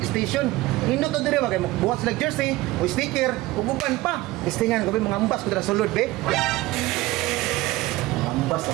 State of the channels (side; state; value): left; quieter; 18.8 dB